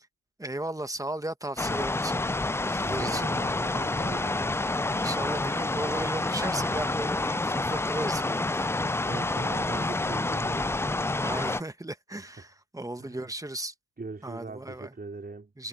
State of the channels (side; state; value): both; normal; correlation 0.65